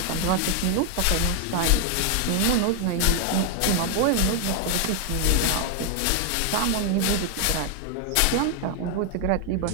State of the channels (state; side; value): different; both; correlation 0.00